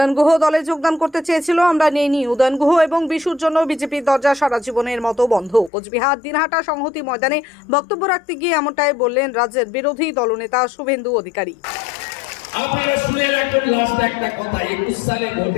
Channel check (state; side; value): drops out; right; at 5.7 s